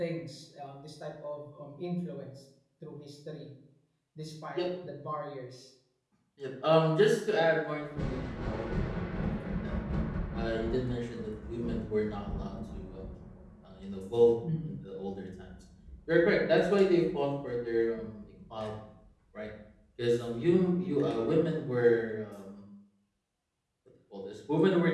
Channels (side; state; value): both; identical; correlation 1.00